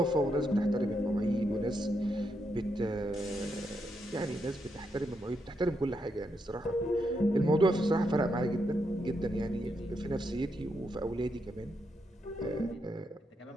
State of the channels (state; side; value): normal; both; correlation 0.81